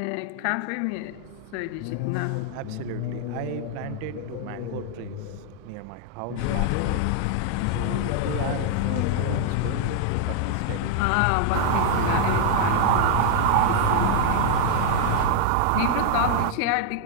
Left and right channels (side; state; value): both; different; correlation 0.00